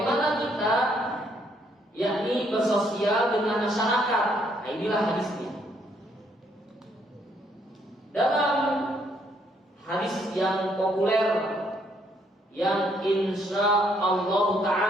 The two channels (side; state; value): both; normal; correlation 0.70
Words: kita, yakni bersosial dengan masyarakat. Nah, inilah hadisnya. Dalam hadis yang populer, yang insya Allah